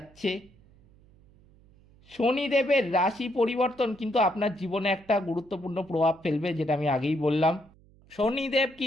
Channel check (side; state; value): right; noise; hum, 28 dB below the sound